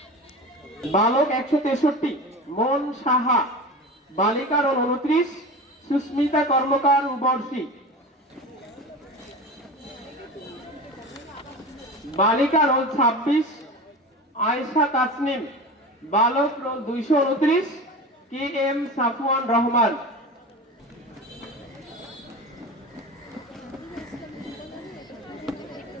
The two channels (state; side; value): normal; both; correlation 0.30